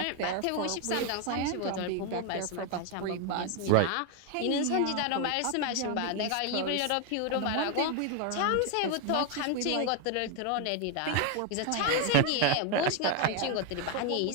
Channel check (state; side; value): different; both; correlation 0.01